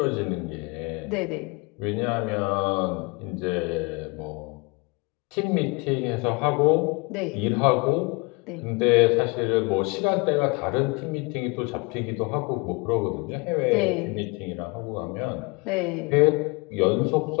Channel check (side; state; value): right; quieter; 28.1 dB